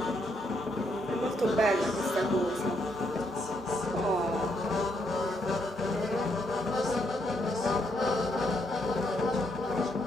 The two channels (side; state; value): both; normal; correlation 0.75